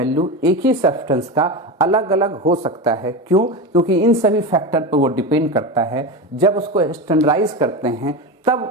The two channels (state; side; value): normal; both; correlation 0.21